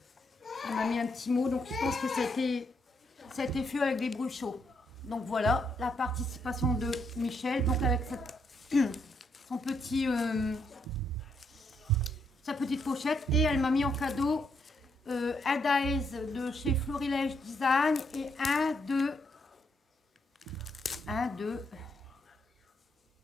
Elle m'a mis un petit mot, donc je pense que ça a été fait avec des bruchots. Donc voilà, la participation de Michel. Donc avec son petit... sa petite pochette. Et elle m'a mis en cadeau... un dice de chez Florilège Design et un de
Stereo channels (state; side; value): normal; both; correlation 0.76